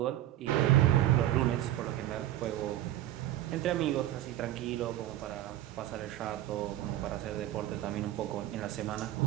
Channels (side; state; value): left; quieter; 13.9 dB